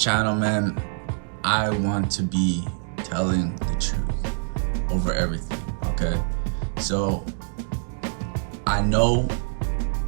man, I want to be telling the truth over everything, okay? So, I know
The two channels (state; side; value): silent; left; 62 dB below the other